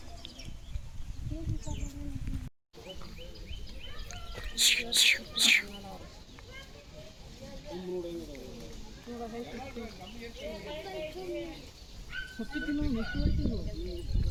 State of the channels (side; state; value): both; identical; correlation 1.00